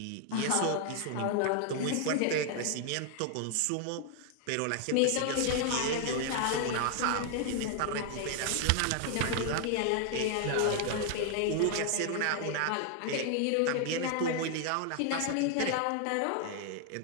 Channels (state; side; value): different; both; correlation 0.00